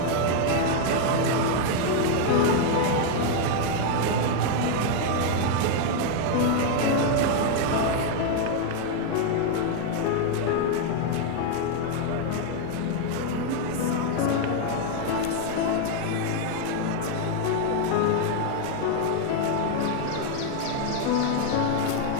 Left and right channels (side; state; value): both; different; correlation 0.00